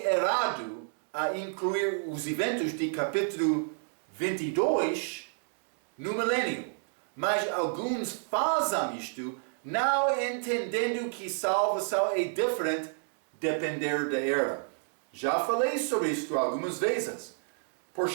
errado a incluir os eventos de capítulo 22 no milênio, mas alguns fazem isto não entendendo que salvação é diferente depender da era. Já falei sobre isto algumas vezes. Por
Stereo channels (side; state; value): left; silent; digital silence